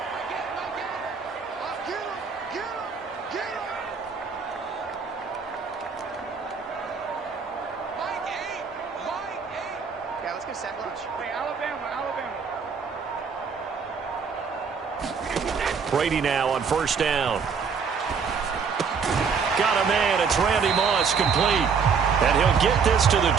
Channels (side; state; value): left; quieter; 5.9 dB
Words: Yeah, let's go set lunch. Hey, Alabama. Brady now on first down. Got a man. It's Randy Moss complete. And he'll get this to the